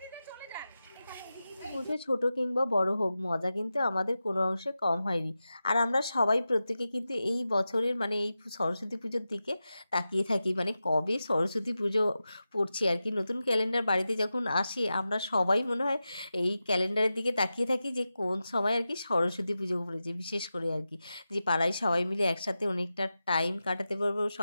পুজো ছোট কিংবা বড় হোক, মজা কিন্তু আমাদের কোনো অংশে কম হয়নি। আর আমরা সবাই প্রত্যেকে কিন্তু এই বছরের মানে এই সরস্বতী পুজোর দিকে তাকিয়ে থাকি, মানে কবে সরস্বতী পুজো পড়ছে আর কি। নতুন ক্যালেন্ডার বাড়িতে যখন আসে আমরা সবাই মনে হয় এই ক্যালেন্ডারের দিকে তাকিয়ে থাকি যে কোন সময় আর কি সরস্বতী পুজো পড়েছে। বিশেষ করে আর কি যে পাড়ায় সবাই মিলে একসাথে অনেকটা টাইম কাটাতে পারবো,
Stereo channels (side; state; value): both; inverted; correlation -0.92